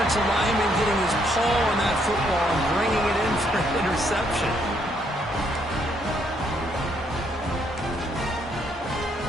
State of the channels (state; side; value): normal; both; correlation 0.71